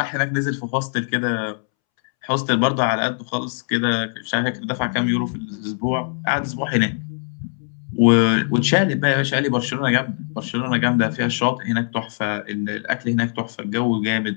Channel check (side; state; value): right; silent; 64 dB below the other